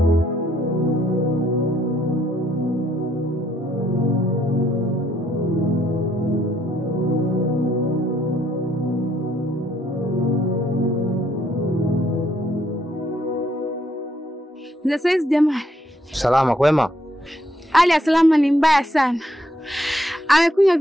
Za saizi jamani. Salama kwema? Hali ya Salama ni mbaya sana. Amekunywa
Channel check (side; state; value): both; normal; correlation 0.71